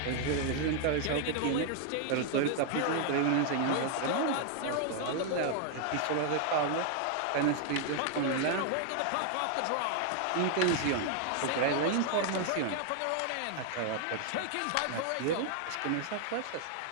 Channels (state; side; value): different; both; correlation 0.00